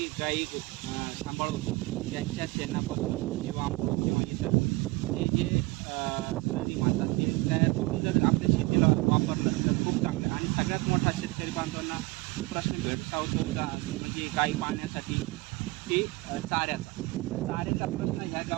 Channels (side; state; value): left; quieter; 22.4 dB